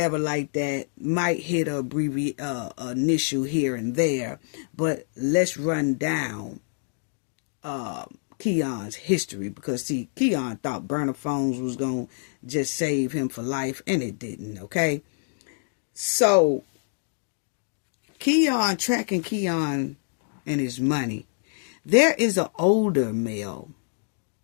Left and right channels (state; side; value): silent; right; digital silence